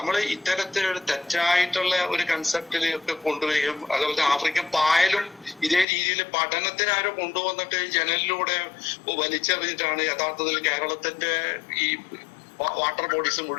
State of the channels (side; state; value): right; drops out; at 5.9 s